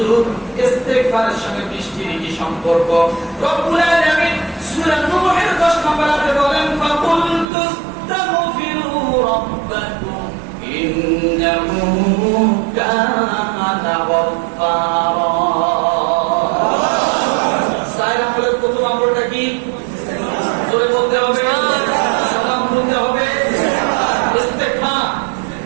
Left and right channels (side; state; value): left; drops out; at 7.5 s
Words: ইস্তিগফারের সঙ্গে বৃষ্টির কি সম্পর্ক? রব্বুল আলামিন সূরা নূহের 10 নম্বর আয়াতে বলেন, ফাকুল তুস্তাগফিরু রাব্বাকুম ইন্নাহু কানা গফফারা। সালাম বলে প্রথম আমলটা কি? জোরে বলতে হবে, সালাম বলতে হবে, ইস্তিগফার।